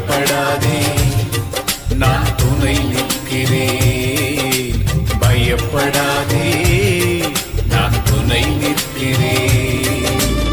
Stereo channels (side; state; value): both; identical; correlation 1.00